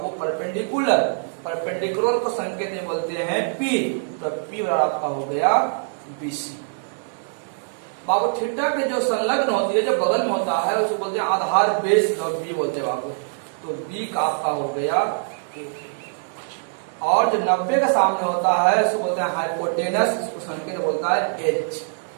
परपेंडिकुलर, परपेंडिकुलर को संकेत में बोलते हैं पी। तो पी बराबर आपका हो गया बीसी। बाबू थीटा के जो संलग्न होती है, जो बगल में होता है, उसको बोलते हैं आधार बेस, और बी बोलते हैं बाबू। तो बी का आपका हो गया, और जो 90 के सामने होता है उसको बोलते हैं हाइपोटेनस, इसको संकेत बोलता है एच,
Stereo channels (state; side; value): silent; left; digital silence